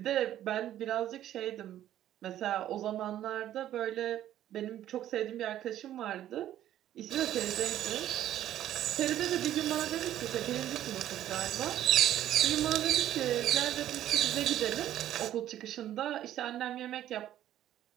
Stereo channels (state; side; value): quieter; left; 12.2 dB